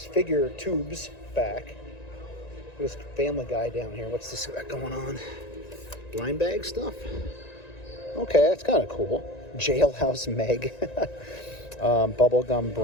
figure tubes back. There's Family Guy down here. What's this got going on? Blind bag stuff? Okay, that's kind of cool. Jailhouse Meg. Bubblegum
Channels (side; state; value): right; late; 1.9 ms